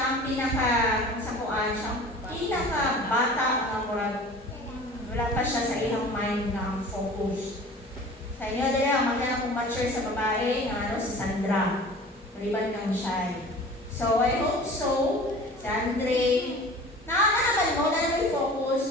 ang pinaka-sakuan, siya ang pinaka-bata ang murag. Wala pa siya sa ilang mind na ang focus. Sa inyo, dila, magkana kong mature sa babae, si Sandra. Maliban kang shy. So, I hope so. Si Andre, naman mo, na naman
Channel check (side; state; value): both; normal; correlation 0.42